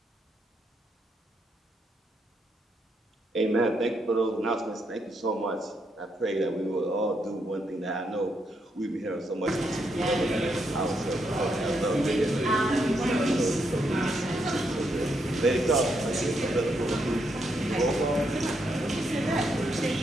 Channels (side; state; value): both; normal; correlation 0.78